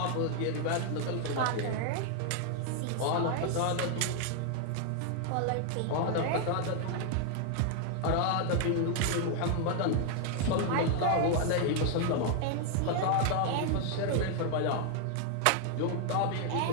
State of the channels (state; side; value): different; both; correlation 0.00